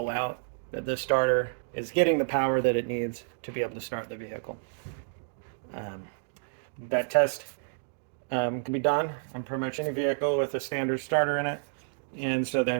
out that this starter is getting the power that it needs to be able to start the vehicle. That test can be done on pretty much any vehicle with a standard starter in it. And so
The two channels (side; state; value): left; silent; digital silence